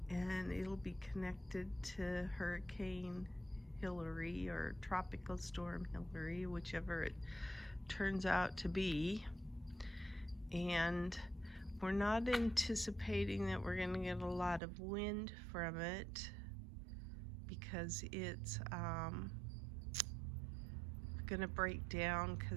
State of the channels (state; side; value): drops out; left; at 14.6 s